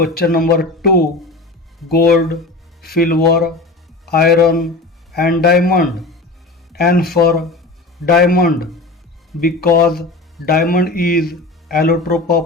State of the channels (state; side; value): quieter; right; 3.0 dB